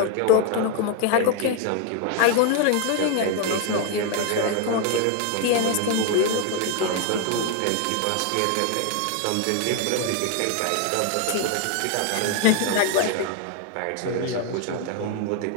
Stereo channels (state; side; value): different; both; correlation 0.01